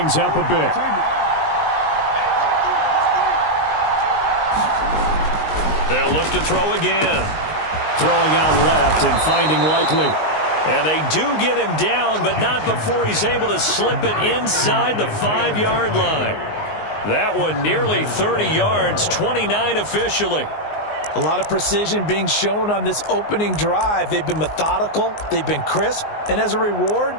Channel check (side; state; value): right; late; 19 ms